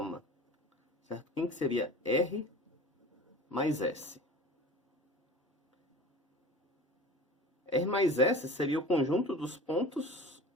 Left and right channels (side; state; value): both; normal; correlation 0.38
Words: Certo? Quem que seria R mais S? R mais S seria o conjunto dos pontos